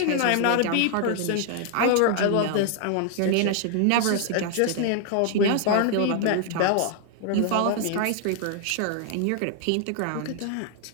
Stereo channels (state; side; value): different; both; correlation 0.00